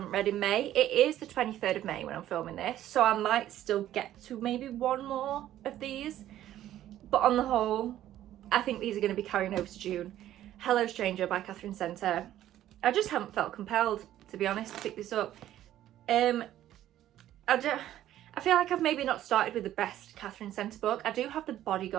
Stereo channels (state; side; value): quieter; left; 12.7 dB